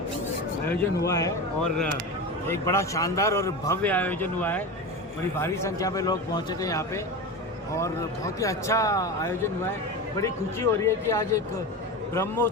आयोजन हुआ है और एक बड़ा शानदार और भव्य आयोजन हुआ है। बड़ी भारी संख्या में लोग पहुंचे थे यहाँ पे और बहुत ही अच्छा आयोजन हुआ है। बड़ी खुशी हो रही है कि आज एक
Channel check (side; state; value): both; normal; correlation 0.24